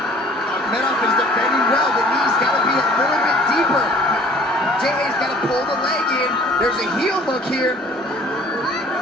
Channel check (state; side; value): normal; both; correlation 0.51